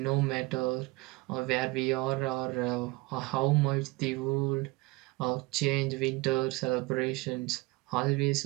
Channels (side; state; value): left; quieter; 22.6 dB